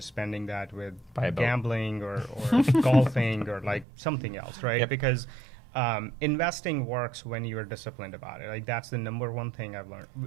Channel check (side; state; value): left; drops out; at 3.9 s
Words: spending that with gambling or golfing or like something else, right? Yep. Because investing works when you are disciplined about it. Like that's the number one thing I've learned.